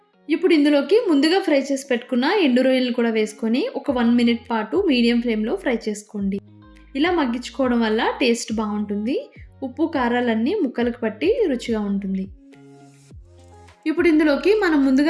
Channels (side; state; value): both; identical; correlation 1.00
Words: ఇప్పుడు ఇందులోకి ముందుగా ఫ్రై చేసి పెట్టుకున్న ఎండు రొయ్యలు కూడా వేసుకొని ఒక 1 మినిట్ పాటు మీడియం ఫ్లేమ్లో ఫ్రై చేసుకోండి. ఇలా మగ్గించుకోవడం వల్ల టేస్ట్ బాగుంటుంది. ఉప్పు కారాలన్నీ ముక్కలకు పట్టి రుచిగా ఉంటుంది. ఇప్పుడు ఇందులోకి మనం